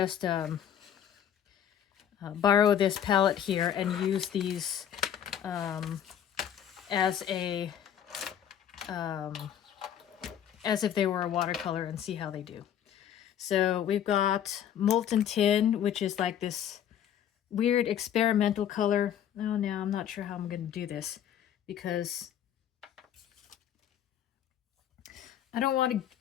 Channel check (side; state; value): right; quieter; 9.7 dB